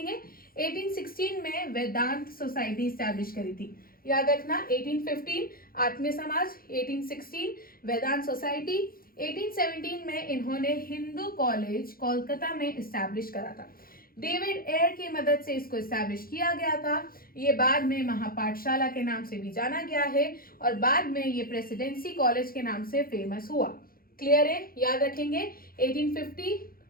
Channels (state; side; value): late; right; 0.42 ms